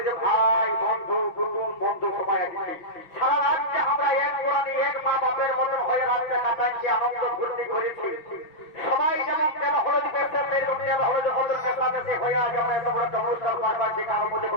ভাই বন্ধু কুটুম বন্ধু সবাই আসছি। সারা রাজ্যে আমরা এক কোরআনে এক মা বাপের মতন হয়ে রাজ্যে কাটাইছি, আনন্দ ফুর্তি করেছি। সবাই যেমন তেল হলুদ পেয়েছে সেরকম তেল হলুদ হলুদ মেশামেশি হয়ে আজ আমরা এত বড় একটা অনুষ্ঠান পারবার, যে কারোর মধ্যে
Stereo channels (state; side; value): late; right; 6.1 ms